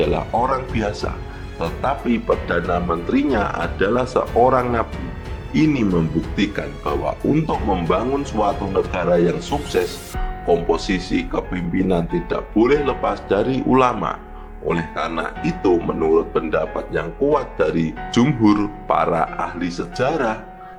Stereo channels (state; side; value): identical; both; correlation 1.00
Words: orang biasa, tetapi Perdana Menterinya adalah seorang nabi. Ini membuktikan bahwa untuk membangun suatu negara yang sukses, komposisi kepemimpinan tidak boleh lepas dari ulama. Oleh karena itu, menurut pendapat yang kuat dari jumhur para ahli sejarah,